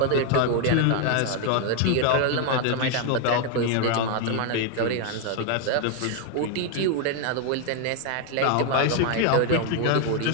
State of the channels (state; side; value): different; both; correlation 0.00